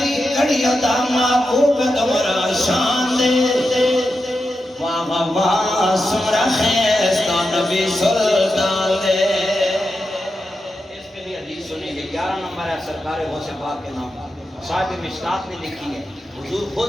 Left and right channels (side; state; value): both; normal; correlation 0.89